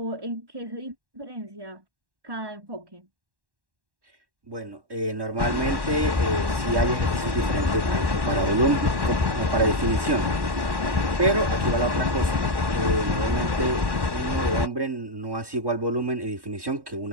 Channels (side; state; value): left; late; 1.1 ms